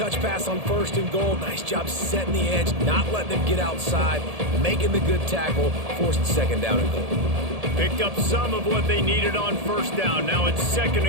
pass on first and goal. Nice job setting the edge, not letting them get outside, making the good tackle, forced second down and goal. Picked up some of what they needed on first down. Now it's second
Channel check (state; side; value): late; left; 1.7 ms